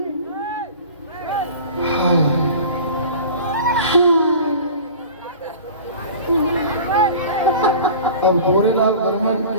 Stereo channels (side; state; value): both; inverted; correlation -0.39